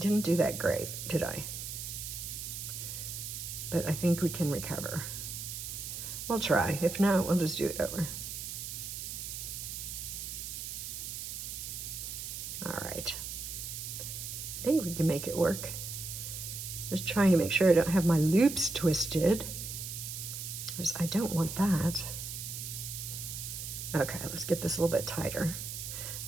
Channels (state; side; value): noise; right; hiss, 6 dB below the sound